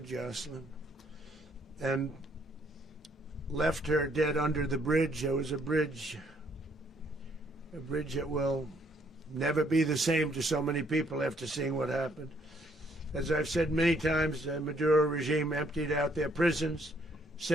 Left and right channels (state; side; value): normal; both; correlation 0.67